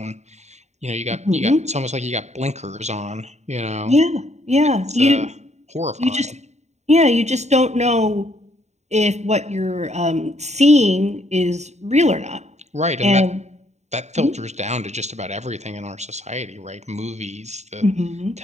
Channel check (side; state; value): left; late; 0.33 ms